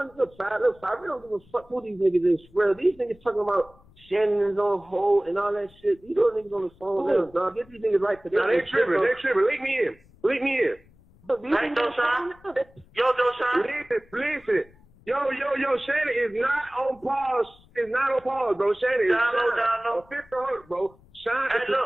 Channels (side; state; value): left; noise; rumble, 28 dB below the sound